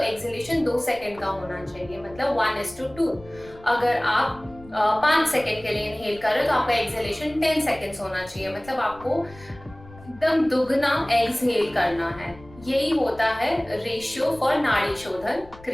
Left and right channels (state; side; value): noise; left; rumble, 21 dB below the sound